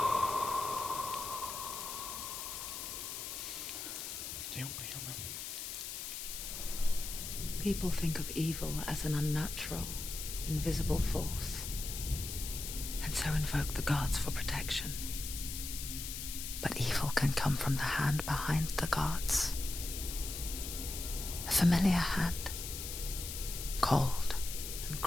People think of evil as an unnatural, invisible force, and so invoke the gods for protection. But evil can come from the hand behind the gods. A familiar hand, cold and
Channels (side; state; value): left; noise; hiss, 6 dB below the sound